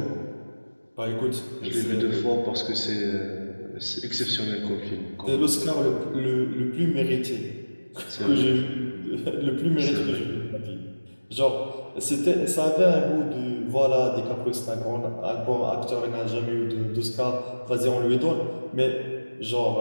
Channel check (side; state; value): both; inverted; correlation -1.00